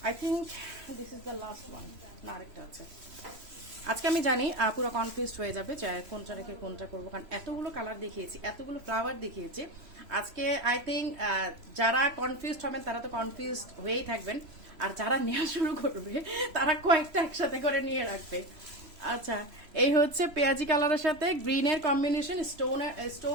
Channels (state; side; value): late; left; 3.0 ms